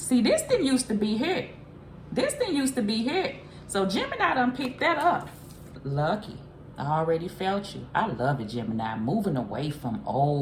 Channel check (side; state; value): both; identical; correlation 1.00